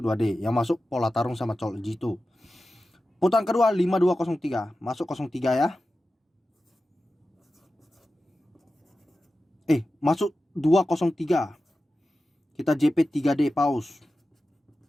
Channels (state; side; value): normal; both; correlation 0.93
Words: 2D. Yang masuk pola tarung sama colok G2. Putaran kedua 5203, masuk 03 ya. Masuk 203. Kita JP 3D pause.